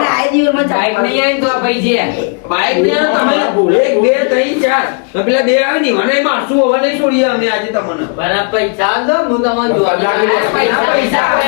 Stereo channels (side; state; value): right; quieter; 38.8 dB